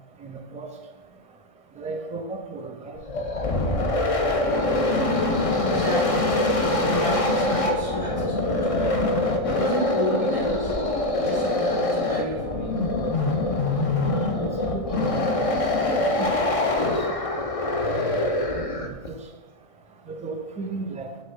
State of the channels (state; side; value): late; right; 1.6 ms